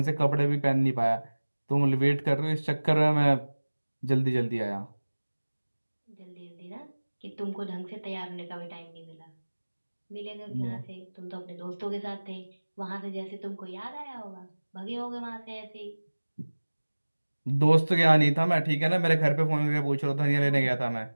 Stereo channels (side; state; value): both; inverted; correlation -1.00